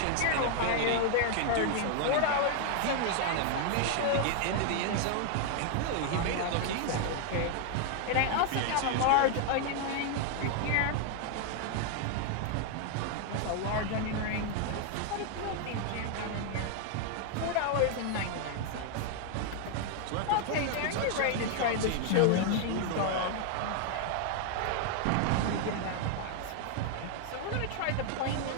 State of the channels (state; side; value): different; both; correlation 0.00